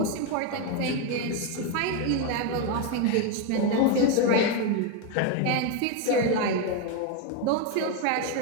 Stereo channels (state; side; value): different; both; correlation 0.02